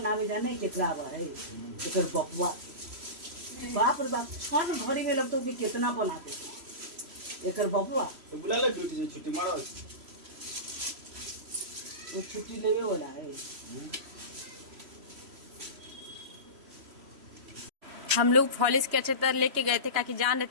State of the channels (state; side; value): late; left; 3.0 ms